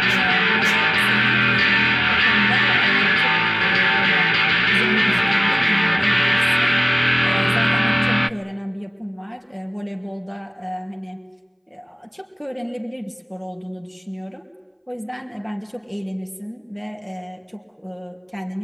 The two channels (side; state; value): both; identical; correlation 1.00